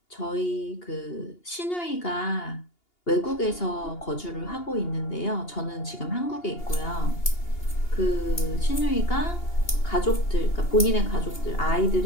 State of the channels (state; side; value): late; right; 2.8 ms